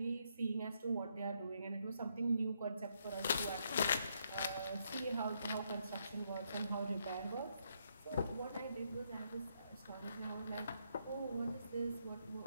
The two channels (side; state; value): both; inverted; correlation -0.75